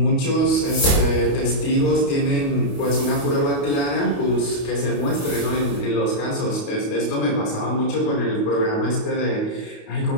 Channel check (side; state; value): right; late; 28 ms